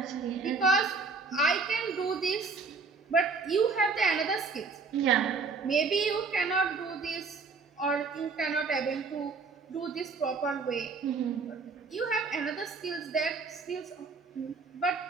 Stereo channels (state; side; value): quieter; left; 4.5 dB